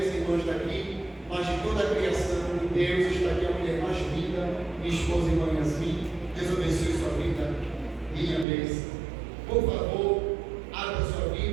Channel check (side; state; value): left; drops out; at 8.5 s